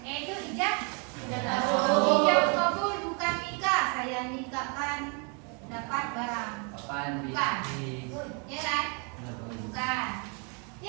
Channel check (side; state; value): left; quieter; 35.8 dB